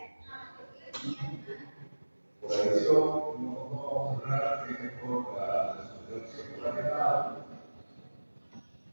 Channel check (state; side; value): inverted; both; correlation -1.00